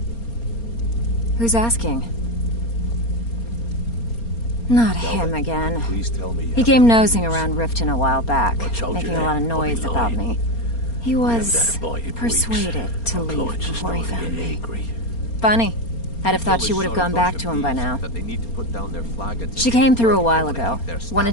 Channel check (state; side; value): late; right; 4.3 ms